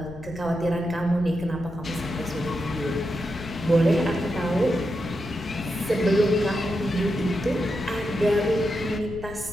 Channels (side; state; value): left; noise; rumble, 14 dB below the sound